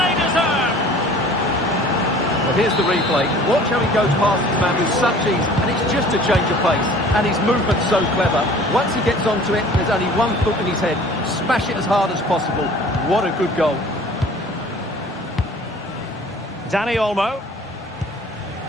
deserve! Well, here's the replay. Watch how he goes past his man with such ease, and it's just a change of pace. And his movement's so clever. Once he gets onto it, there's only one thought in his head. Smash it as hard as possible. What a good goal. Dani Olmo.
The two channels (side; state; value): both; normal; correlation 0.48